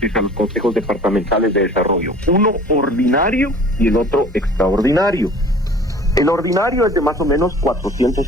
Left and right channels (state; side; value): normal; both; correlation 0.47